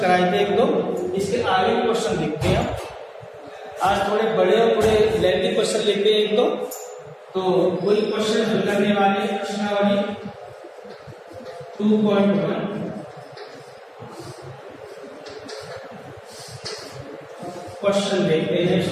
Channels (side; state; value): both; identical; correlation 1.00